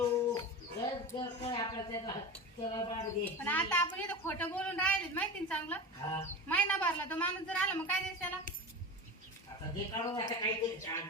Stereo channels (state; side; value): normal; both; correlation 0.27